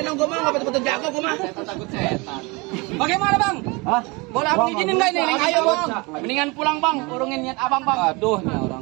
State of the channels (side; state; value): left; quieter; 26.6 dB